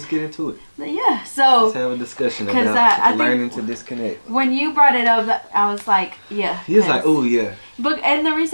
get into it. yeah. So Let's have a discussion 'cause about I learning think to disconnect. when you brought it up, I was like, yeah. He was like, oh yeah. But and the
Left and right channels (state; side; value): inverted; both; correlation -1.00